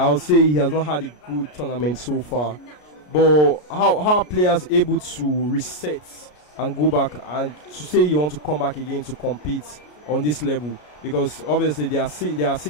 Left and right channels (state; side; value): late; right; 33 ms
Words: say he has not had a good tournament so far. But how are players able to reset and go back and to say you want to come back again to compete on this level? Because obviously there are